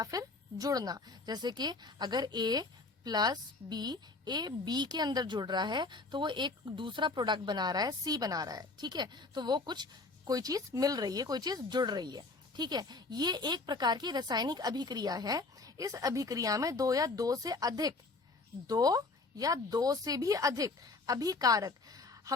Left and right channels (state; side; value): quieter; right; 3.6 dB